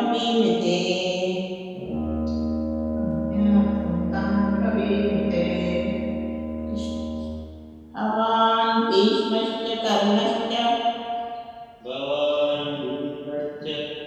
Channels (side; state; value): both; identical; correlation 1.00